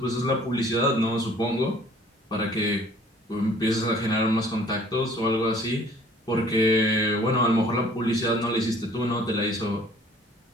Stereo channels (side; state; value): both; normal; correlation 0.54